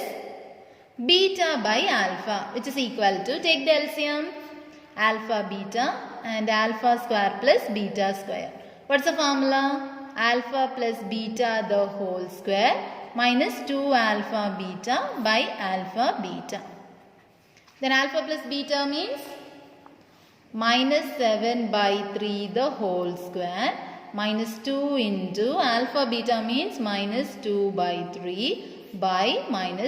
beta by alpha, which is equal to, take the LCM, alpha beta and alpha square plus beta square. What's the formula? Alpha plus beta the whole square minus 2 alpha beta by alpha beta. Then alpha plus beta means minus 7 by 3 the whole square minus 2 into alpha beta means minus 2 by 3 by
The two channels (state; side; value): identical; both; correlation 1.00